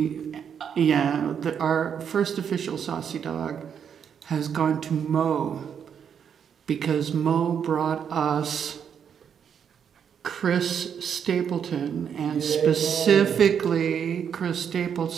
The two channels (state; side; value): quieter; left; 7.8 dB